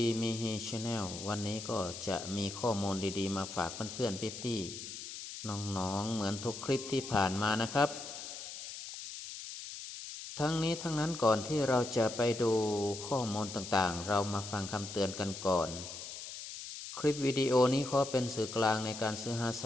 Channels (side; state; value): left; noise; hiss, 10 dB below the sound